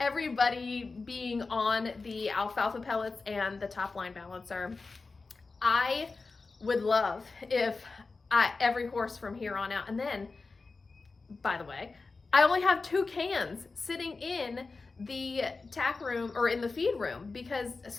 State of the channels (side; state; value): right; quieter; 4.0 dB